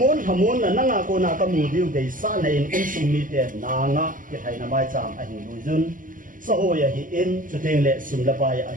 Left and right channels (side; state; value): left; late; 0.39 ms